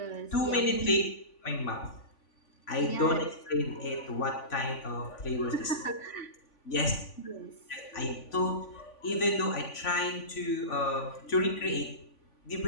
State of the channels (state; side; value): late; right; 3.5 ms